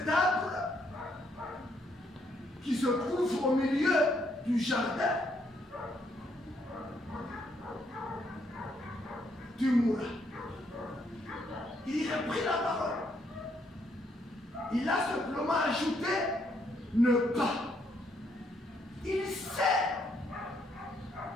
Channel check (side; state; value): both; normal; correlation 0.72